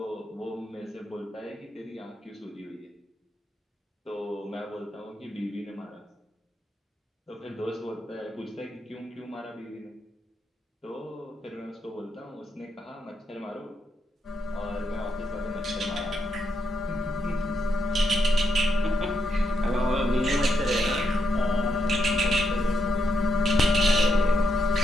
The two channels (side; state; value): both; normal; correlation 0.81